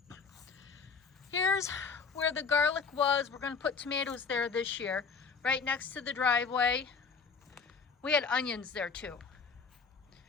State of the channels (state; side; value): quieter; right; 5.3 dB